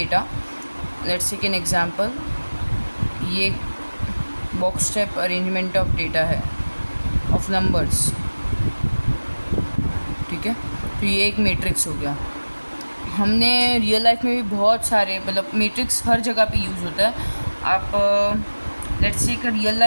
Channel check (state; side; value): inverted; both; correlation -1.00